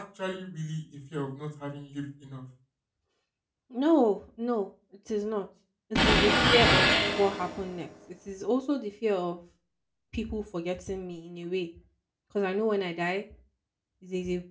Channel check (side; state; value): both; identical; correlation 1.00